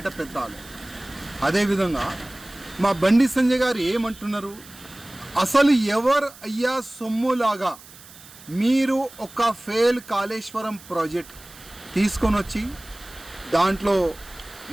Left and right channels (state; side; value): noise; right; hiss, 20 dB below the sound